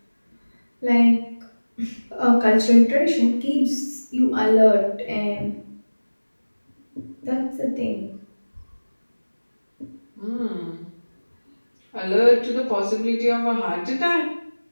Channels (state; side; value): inverted; both; correlation -1.00